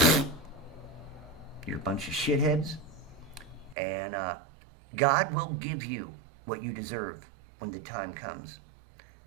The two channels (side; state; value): left; drops out; at 3.8 s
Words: You're a bunch of shitheads, and God will give you what you deserve when the time comes.